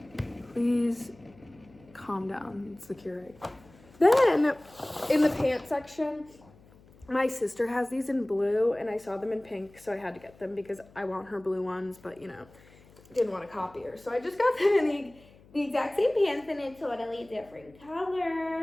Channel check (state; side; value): noise; left; hum, 25 dB below the sound